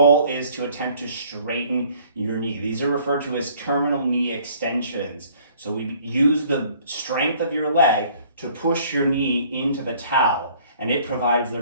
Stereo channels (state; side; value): inverted; both; correlation -0.56